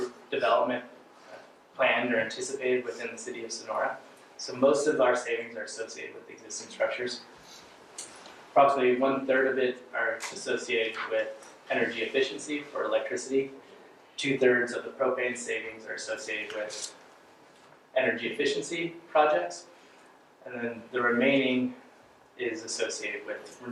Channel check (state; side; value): identical; both; correlation 1.00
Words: development planned or anticipated within the city of Sonora. So most of our savings are associated with existing structures. Approximately 1/3 of it are associated with energy efficiency for electricity. 2/3 of the propane savings are associated with energy efficiency projects. And then the remaining is associated with